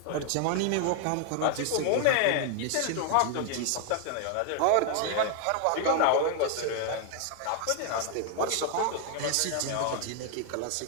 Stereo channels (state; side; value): different; both; correlation 0.00